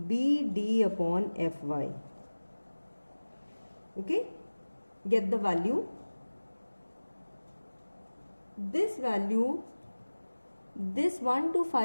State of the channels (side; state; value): both; inverted; correlation -1.00